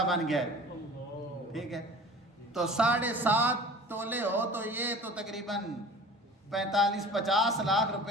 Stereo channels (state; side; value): normal; both; correlation 0.42